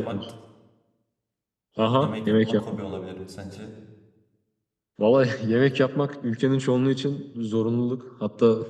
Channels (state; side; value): identical; both; correlation 1.00